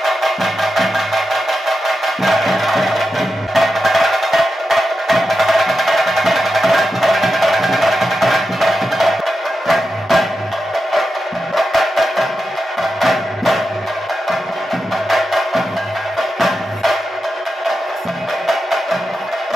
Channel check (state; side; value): normal; both; correlation 0.89